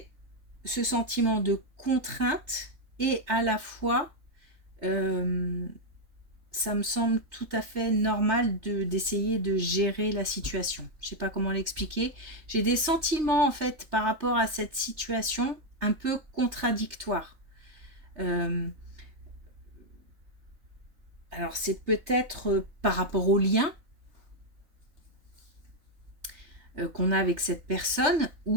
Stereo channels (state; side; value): late; left; 3.3 ms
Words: ce sentiment de contrainte et à la fois, ça me semble tout à fait normal d'essayer de gérer la situation. Je ne sais pas comment l'expliquer. J'ai des sentiments en fait par rapport à cette situation un peu contradictoires. Alors c'est peut-être par rapport au lien. qu'on a avec cette personne,